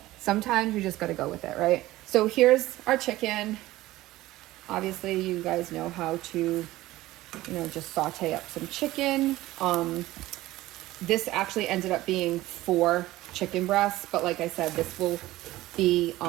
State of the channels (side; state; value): left; quieter; 17.0 dB